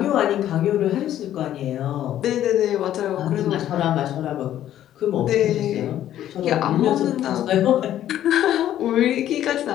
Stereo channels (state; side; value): quieter; right; 11.9 dB